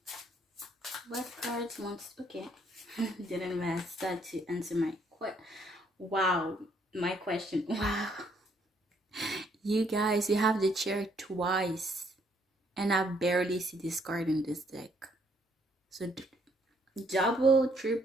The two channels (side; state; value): both; normal; correlation 0.68